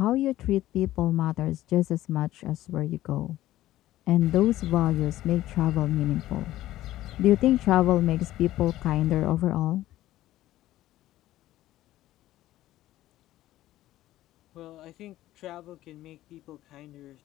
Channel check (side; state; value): right; quieter; 14.8 dB